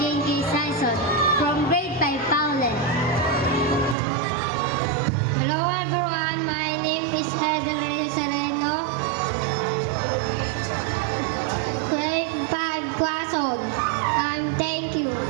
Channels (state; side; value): drops out; left; at 4.0 s